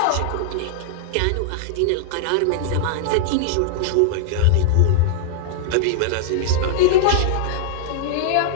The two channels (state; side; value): different; both; correlation -0.01